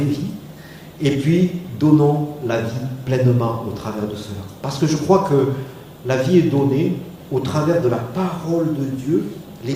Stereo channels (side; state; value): both; identical; correlation 1.00